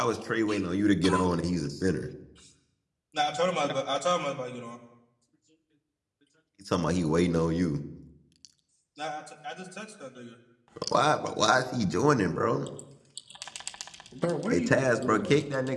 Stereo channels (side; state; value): both; identical; correlation 1.00